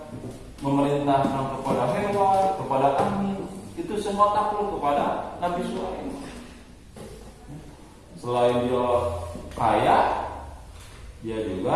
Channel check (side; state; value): both; identical; correlation 1.00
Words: memerintahkan kepada hewan, kepada angin. Itu semua takluk kepada Nabi Sulaiman. Selain dia kaya, dia